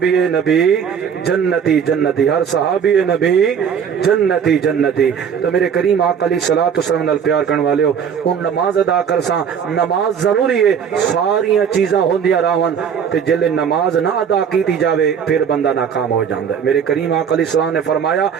نبی جنتی جنتی ہر صحابی نبی جنتی جنتی. تو میرے کریم آقا علیہ الصلوۃ والسلام نال پیار کرنے والے ہو ان نماز ادا کر ساں. نماز ضروری ہے ساریاں چیزاں ہوندیاں راون تے جلے نماز نہ ادا کیتی جاوے پھر بندہ ناکام ہو جاندا ہے. میرے کریم آقا علیہ السلام نے فرمایا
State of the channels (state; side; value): quieter; left; 7.4 dB